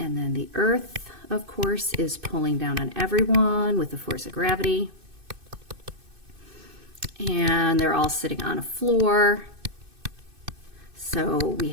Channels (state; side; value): late; left; 2.6 ms